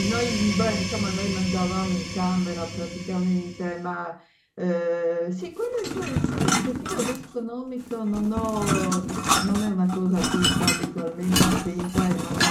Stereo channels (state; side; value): identical; both; correlation 1.00